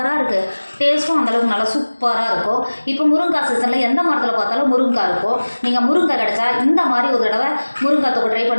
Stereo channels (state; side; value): inverted; both; correlation -1.00